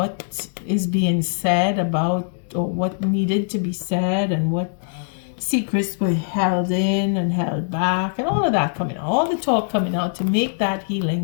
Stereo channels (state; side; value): silent; right; digital silence